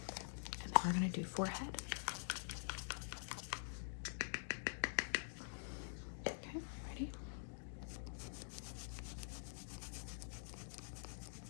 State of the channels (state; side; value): silent; right; digital silence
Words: We're going to do forehead. Okay, ready?